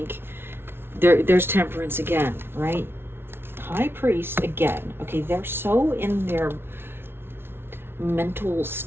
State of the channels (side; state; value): left; late; 0.11 ms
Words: there's Temperance again, right? High Priest again. Okay, they're so in their mental